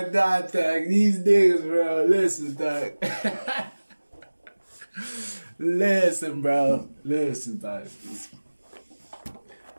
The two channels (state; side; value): inverted; both; correlation -1.00